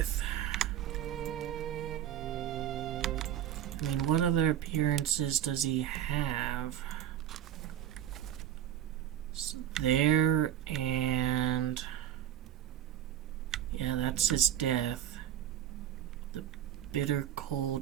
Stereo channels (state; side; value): quieter; left; 11.1 dB